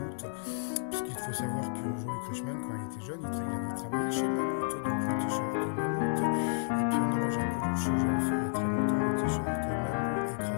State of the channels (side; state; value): right; silent; digital silence